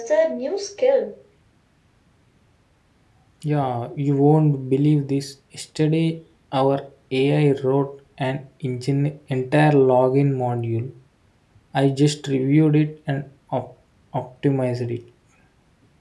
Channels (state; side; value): identical; both; correlation 1.00